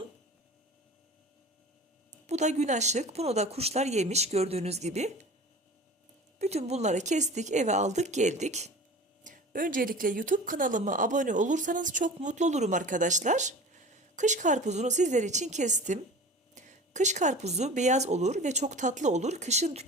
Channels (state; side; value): normal; both; correlation 0.38